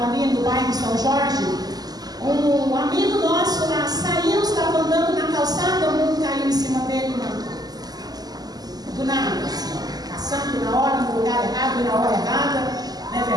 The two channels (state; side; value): late; left; 0.19 ms